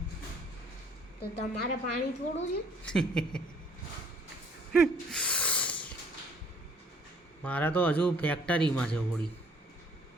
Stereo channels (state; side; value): normal; both; correlation 0.59